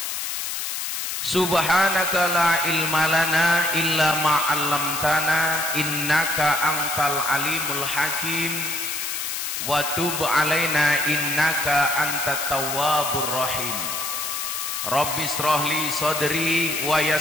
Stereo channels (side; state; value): left; noise; hiss, 3 dB below the sound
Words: Subhanaka la ilma lana illa ma 'allamtana innaka antal alimul hakim. Wa tub alaina innaka antat tawwabur rahim. Rabbi shrahli sadri wa